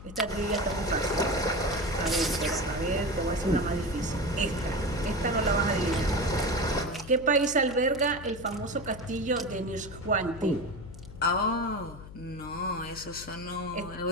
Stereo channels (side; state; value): left; noise; hum, 15 dB below the sound